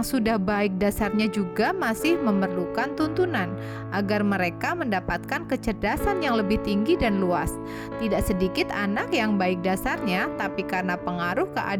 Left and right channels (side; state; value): both; identical; correlation 1.00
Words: sudah baik dasarnya juga masih memerlukan tuntunan agar mereka mendapatkan kecerdasan yang lebih tinggi dan luas. Tidak sedikit anak yang baik dasarnya, tapi karena pengaruh